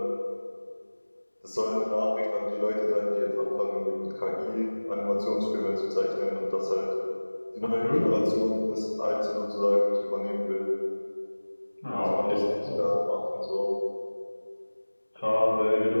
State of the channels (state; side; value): inverted; both; correlation -1.00